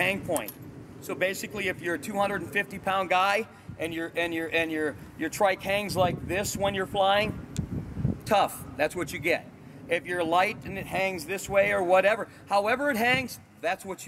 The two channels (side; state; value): both; identical; correlation 1.00